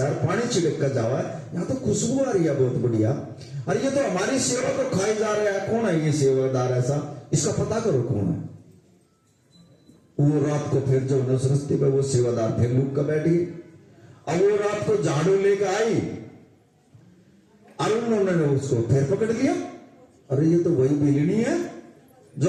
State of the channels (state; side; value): identical; both; correlation 1.00